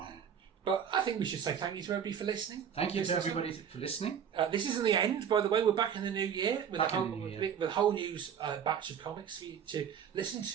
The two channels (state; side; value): quieter; left; 8.1 dB